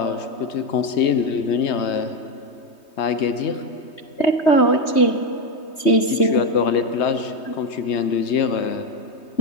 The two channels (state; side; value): late; right; 3.2 ms